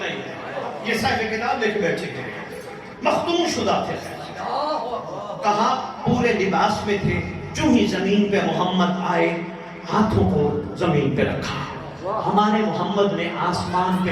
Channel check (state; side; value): identical; both; correlation 1.00